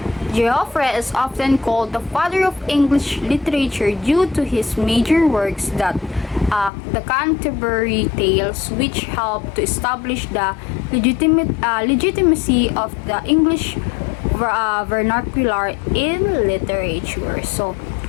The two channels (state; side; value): drops out; right; at 6.7 s